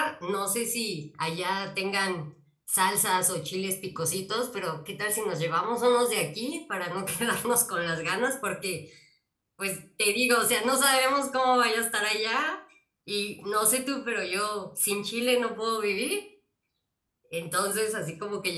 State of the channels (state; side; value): identical; both; correlation 1.00